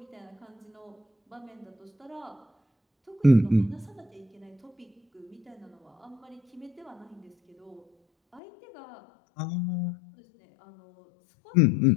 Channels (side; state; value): right; drops out; at 8.4 s